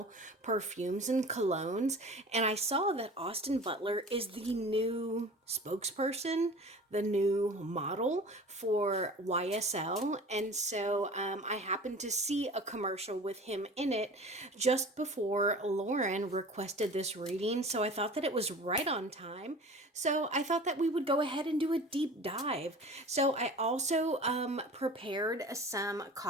perfumes and colognes, and I saw that Austin Butler is the new spokesperson, the new model for YSL. And so I happened to see a commercial with him in it just before Lauren requested this reading. So I thought that it was right on time. So I thought that we would go ahead and do a deep dive. So I also prepared some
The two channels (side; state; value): both; normal; correlation 0.40